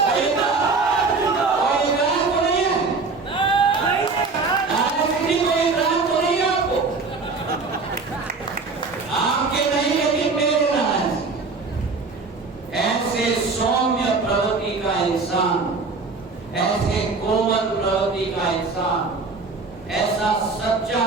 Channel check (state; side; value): quieter; left; 4.1 dB